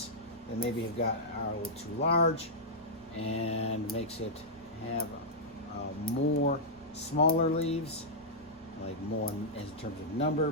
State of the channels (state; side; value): normal; both; correlation -0.09